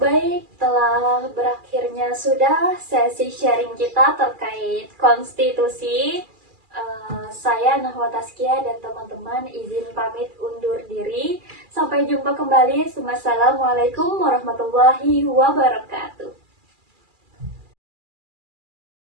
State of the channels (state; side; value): late; left; 2.4 ms